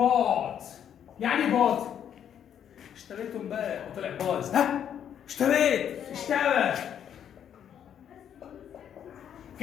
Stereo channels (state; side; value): quieter; right; 9.2 dB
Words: يعني ايه بوت؟ اشتريته امبارح وطلع بايظ. ها؟ اشترى.